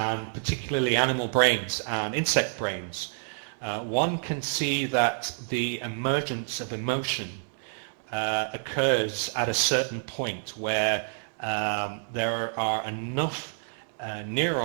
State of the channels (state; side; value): silent; left; digital silence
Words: and particularly animal brains and insect brains, one can see that the emergence of emotion occurs at a certain point where there are enough